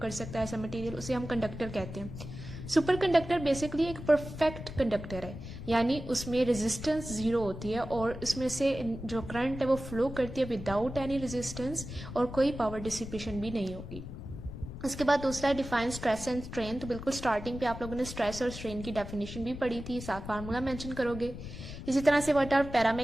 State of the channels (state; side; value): noise; left; rumble, 10 dB below the sound